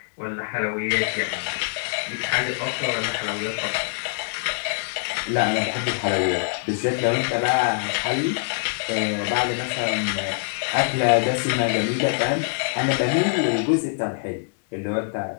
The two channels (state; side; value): silent; right; digital silence